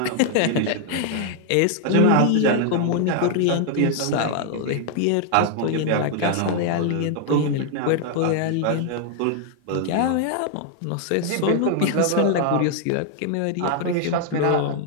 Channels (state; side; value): different; both; correlation 0.00